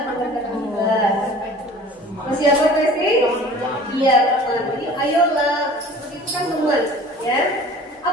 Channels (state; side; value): normal; both; correlation 0.45